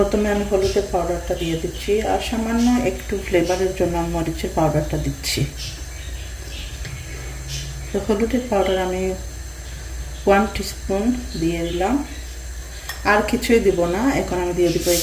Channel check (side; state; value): both; identical; correlation 1.00